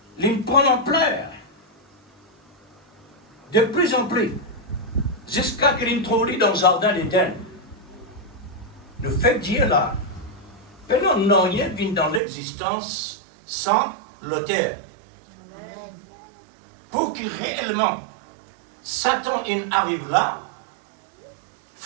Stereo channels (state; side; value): drops out; left; at 12.2 s